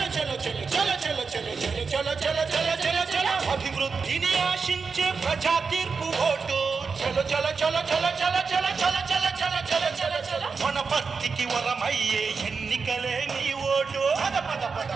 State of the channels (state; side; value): quieter; left; 5.1 dB